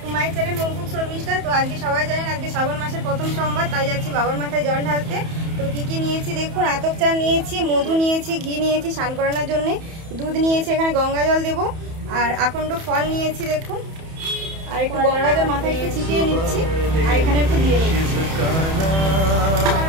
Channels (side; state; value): left; late; 31 ms